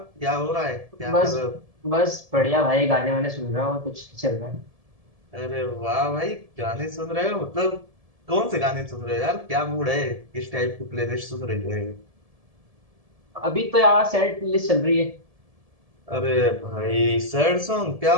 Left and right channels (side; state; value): left; late; 1.7 ms